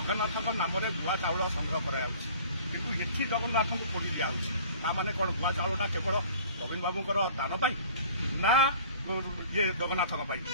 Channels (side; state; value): both; inverted; correlation -0.47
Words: ନାମରେ ଭୁଆ ଚାଉଳ ସଂଗ୍ରହ କରାଯାଉଛି, କିନ୍ତୁ ଏଠି ଜଗନ୍ନାଥଙ୍କୁ ପୋଡ଼ି ଦିଆଯାଉଛି। ତାମାନେ କ'ଣ ଭୁଆ ଚାଉଳଟା କେବଳ ନବୀନ ବାବୁଙ୍କର ଦାନ ପାଇଁ ନା ଜଗନ୍ନାଥଙ୍କ ପାଇଁ?